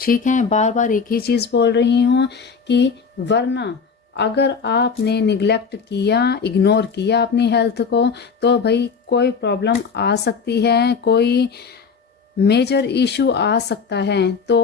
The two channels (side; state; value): right; quieter; 5.6 dB